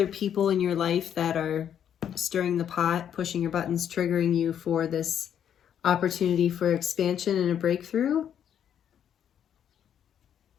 people in your life that are stirring the pot, pushing your buttons, triggering you for this opportunity for expansion and a breakthrough.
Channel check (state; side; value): quieter; right; 9.2 dB